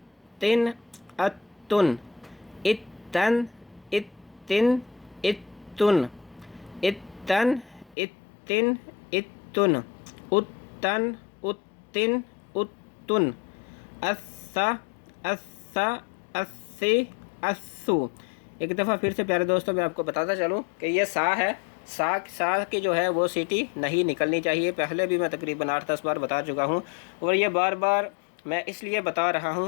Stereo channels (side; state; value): right; drops out; at 8.0 s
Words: اتن اتن اتن اتن اتن اتن اتن اتن اتن اسا اسا اسی اسو. ایک دفعہ پھر سے پیارے دوستوں میں آپ کو بتاتا چلوں کہ یہ سا ہے, سا کی جو ہے وہ سیٹی نہیں نکلنی چاہیے. پہلے بھی میں تقریباً 8-10 بار بتا چکا ہوں اور یہ بار بار میں اس لیے بتا رہا